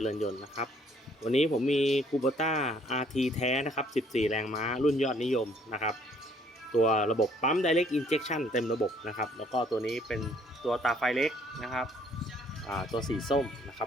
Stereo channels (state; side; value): normal; both; correlation 0.62